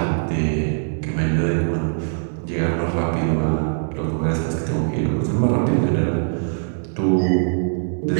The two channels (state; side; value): silent; left; digital silence